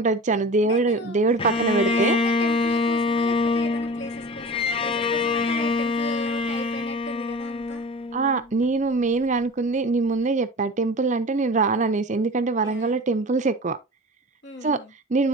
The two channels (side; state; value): both; normal; correlation 0.36